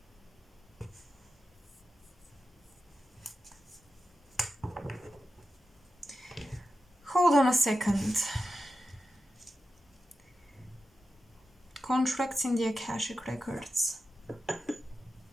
Hold on a second. Contracts in the AKASHIC records.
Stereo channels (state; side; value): normal; both; correlation 0.91